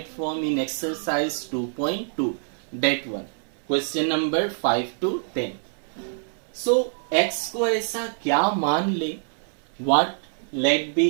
form in exercise 2.2, that one, question number 5 to 10. So x को ऐसा क्या मान ले, what let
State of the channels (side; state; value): left; silent; 60 dB below the other